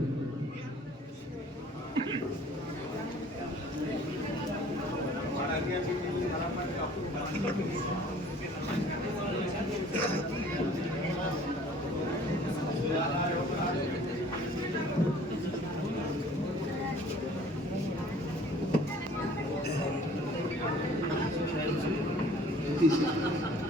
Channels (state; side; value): normal; both; correlation 0.52